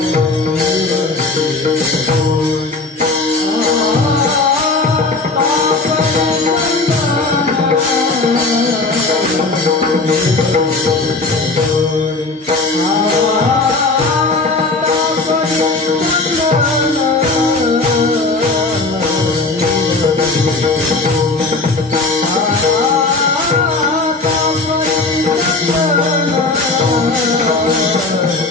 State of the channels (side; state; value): right; quieter; 3.4 dB